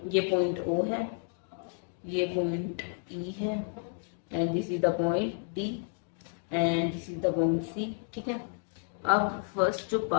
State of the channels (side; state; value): right; silent; 57 dB below the other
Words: ये पॉइंट ओ है, ये पॉइंट ई है, and this is the point D, and this is the point C. ठीक है, अब फर्स्ट जो